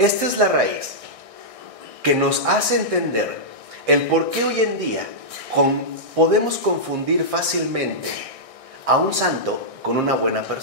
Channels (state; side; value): late; left; 1.6 ms